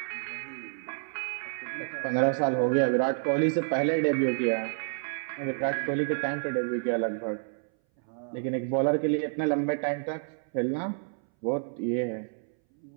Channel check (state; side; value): silent; left; 58 dB below the other